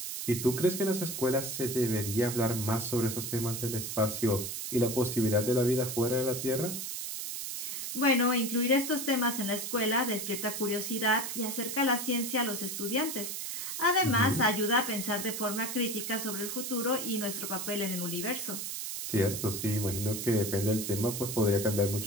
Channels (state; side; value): noise; right; hiss, 5 dB below the sound